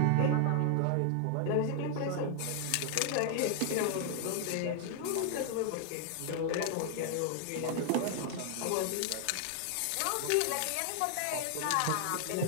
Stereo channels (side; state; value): both; different; correlation 0.00